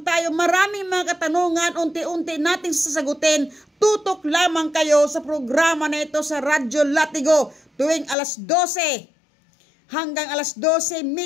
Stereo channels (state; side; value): drops out; right; at 8.2 s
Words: tayo? Maraming mga katanungan, unti-unti nating sasagutin. Tutok lamang kayo sa programa na ito sa Radyo Latigo tuwing alas 12 hanggang alas